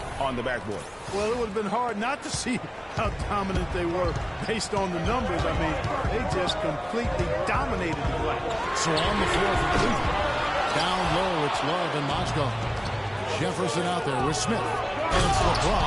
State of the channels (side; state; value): both; identical; correlation 1.00